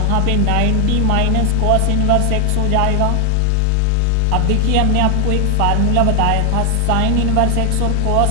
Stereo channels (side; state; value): both; different; correlation 0.00